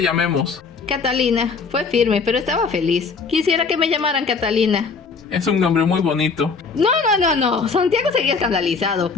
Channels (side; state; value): right; quieter; 4.9 dB